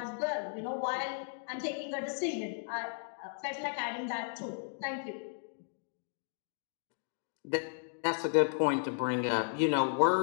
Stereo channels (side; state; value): right; silent; digital silence